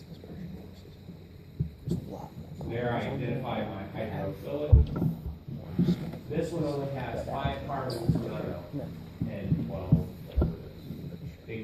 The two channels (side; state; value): both; identical; correlation 1.00